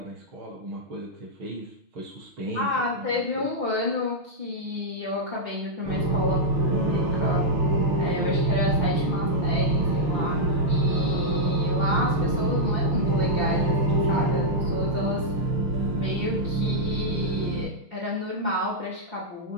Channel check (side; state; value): left; late; 6.3 ms